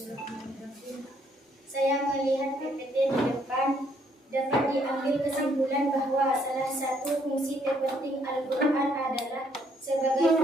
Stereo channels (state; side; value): normal; both; correlation 0.68